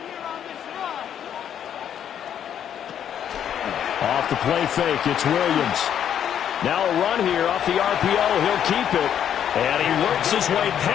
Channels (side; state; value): right; quieter; 9.4 dB